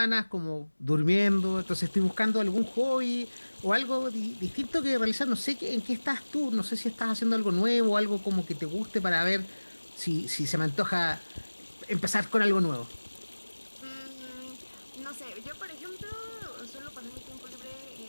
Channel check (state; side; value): inverted; both; correlation -1.00